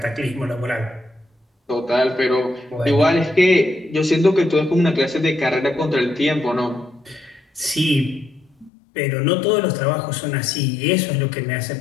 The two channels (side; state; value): right; drops out; at 8.7 s